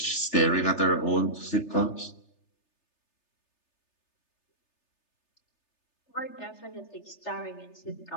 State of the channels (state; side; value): late; right; 3.3 ms